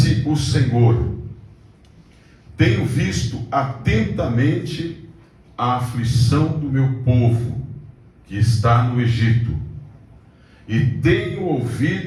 o Senhor: tenho visto atentamente a aflição do meu povo que está no Egito, e tenho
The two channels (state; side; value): identical; both; correlation 1.00